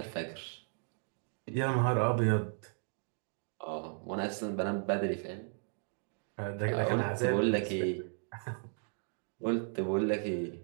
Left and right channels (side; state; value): left; silent; 54 dB below the other